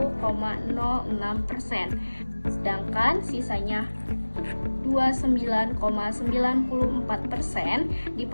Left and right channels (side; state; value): both; inverted; correlation -1.00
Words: Sedangkan sisanya 29,94%